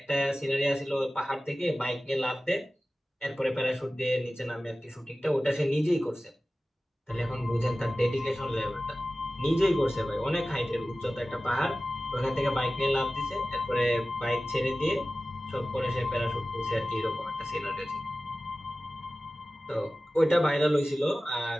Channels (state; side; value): normal; both; correlation 0.96